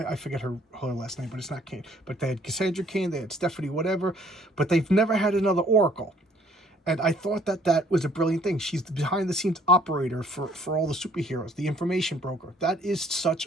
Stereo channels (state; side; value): normal; both; correlation 0.61